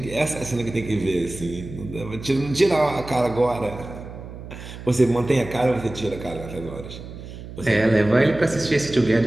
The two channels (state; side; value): noise; right; hum, 13 dB below the sound